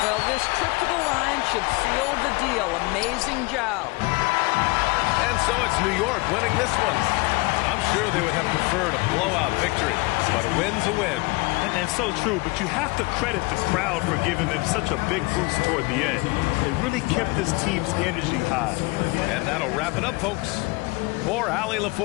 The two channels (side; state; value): right; quieter; 25.2 dB